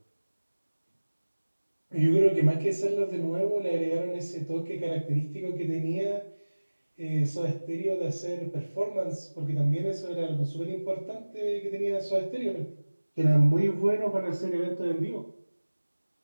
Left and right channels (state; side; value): inverted; both; correlation -1.00